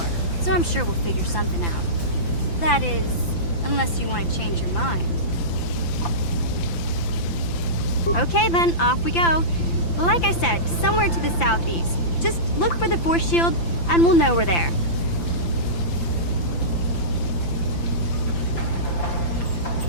so I'm sure we'll figure something out. That is, unless you want to change your mind. Okay then, off we go. Like I said, somewhere to the southeast. Just look for the force shield, and we'll know we're there.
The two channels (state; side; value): late; right; 5.9 ms